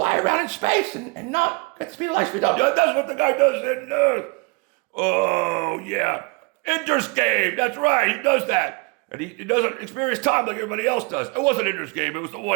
around in space and not get the speed of light speed up. Yeah, that's what the guy does in, oh, yeah, Ender's Game. That's right, he does that. And he doesn't experience time like everybody else does. It wasn't Ender's Game, it was the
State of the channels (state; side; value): quieter; left; 28.0 dB